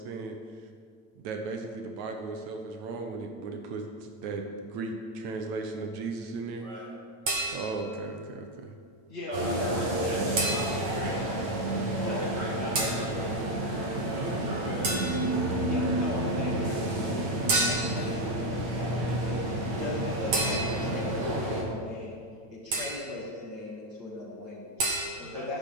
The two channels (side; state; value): left; late; 9.1 ms